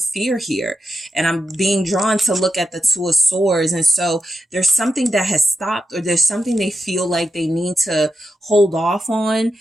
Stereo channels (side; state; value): both; normal; correlation 0.86